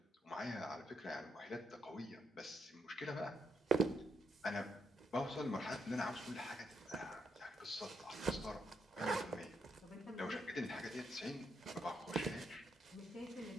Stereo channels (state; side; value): normal; both; correlation 0.79